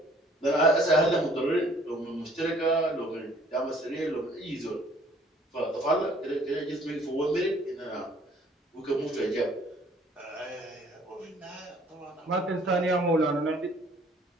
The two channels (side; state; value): both; normal; correlation 0.58